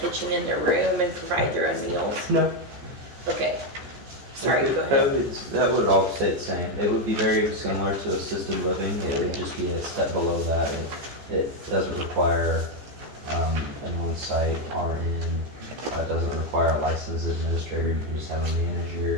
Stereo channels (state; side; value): late; left; 14 ms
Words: in their room and provide their own meals? No. Okay, sorry, Okay, go ahead. that would all stay the same. It would be very similar to assisted living. It would just be a step below that. It doesn't require an on-site RN. It doesn't require a licensed administrator. You can just have a